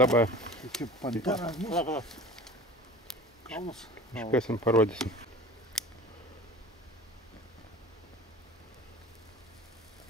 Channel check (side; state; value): both; normal; correlation 0.40